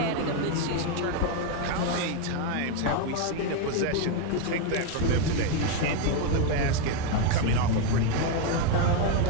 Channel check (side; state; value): both; different; correlation 0.02